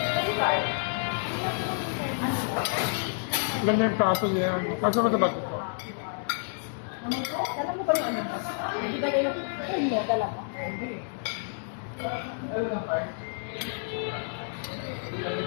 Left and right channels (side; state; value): right; silent; digital silence